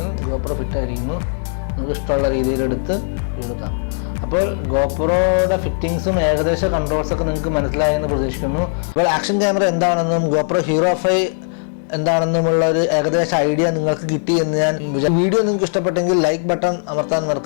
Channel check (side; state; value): right; silent; digital silence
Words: GoPro ഫിറ്റ് ആയിരിക്കുന്നു. നമുക്ക് ഇഷ്ടമുള്ള രീതിയിലെടുത്ത് എടുക്കാം. അപ്പോൾ GoProയുടെ ഫിറ്റിങ്സും ഏകദേശ കൺട്രോൾസൊക്കെ നിങ്ങൾക്ക് മനസ്സിലായെന്ന് പ്രതീക്ഷിക്കുന്നു. അപ്പോൾ ആക്ഷൻ ക്യാമറ എന്താണെന്നും GoPro Hero 5 എന്താണെന്നുമുള്ള ഒരു ഏകദേശ ഐഡിയ നിങ്ങൾക്ക് കിട്ടി എന്ന് ഞാൻ വീഡിയോ നിങ്ങൾക്ക് ഇഷ്ടപ്പെട്ടെങ്കിൽ ലൈക്ക് ബട്ടൺ അമർത്താൻ